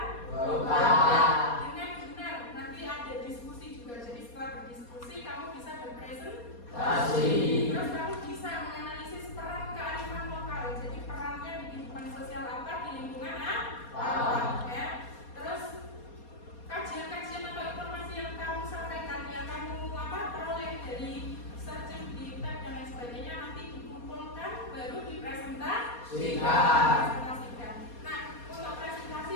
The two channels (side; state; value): right; late; 4.2 ms